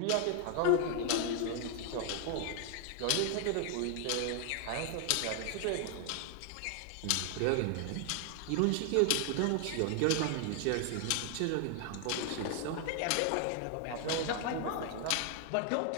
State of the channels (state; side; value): different; both; correlation 0.00